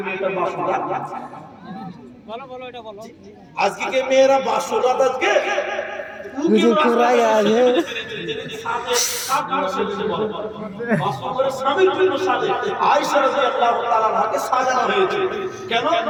মেয়েটার বাসর রাত? বলো এটা বলো। আজকে কি মেয়েরা বাসর রাত আজকে? मुझे पूरा याद है আয়েশা রাদিয়াল্লাহু তাআলা আনহাকে সাজানো হয়েছে কেন?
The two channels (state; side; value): identical; both; correlation 1.00